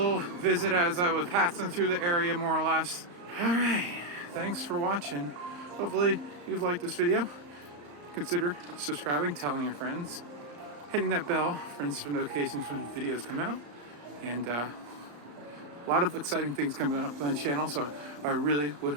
visit as I was passing through the area, more or less. All right, thanks for watching. Hopefully you've liked this video. Consider subscribing, telling your friends, hitting that bell for instant notifications when videos come out, and a lot of exciting things coming up on the channel. So I really would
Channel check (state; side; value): late; left; 34 ms